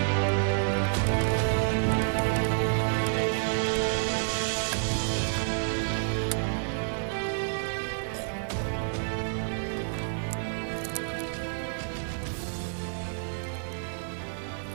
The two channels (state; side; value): silent; left; digital silence